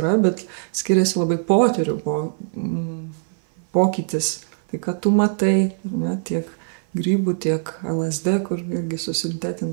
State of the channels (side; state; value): left; silent; 57 dB below the other